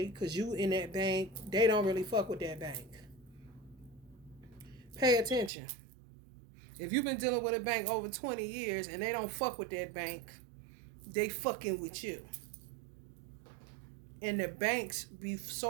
because you in that bank, they don't really fuck with that bank. Pay attention. If you've been dealing with a bank over 20 years and they don't fuck with that bank, they fucking with you. And the banks be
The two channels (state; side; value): drops out; left; at 5.5 s